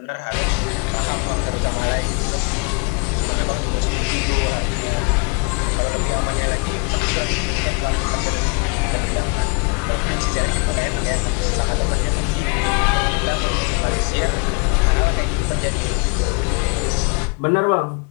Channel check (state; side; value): quieter; right; 34.8 dB